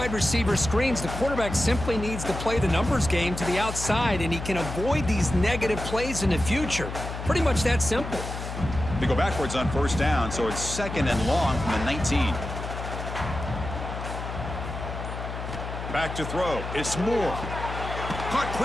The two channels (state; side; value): noise; left; hum, 7 dB below the sound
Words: receiver screens, the quarterback simply needs to play the numbers game to the outside, and he can avoid these negative plays in the future. Pretty much that simple. They go backwards on 1st down, so it's 2nd and long from the 19. Back to throw. It's Moore. Caught